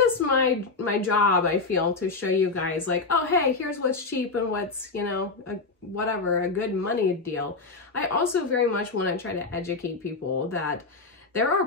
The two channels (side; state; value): right; quieter; 4.0 dB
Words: my job, I feel, to show you guys like, oh, hey, here's what's cheap and what's, you know, a good money deal. I also very much want to try to educate people that there are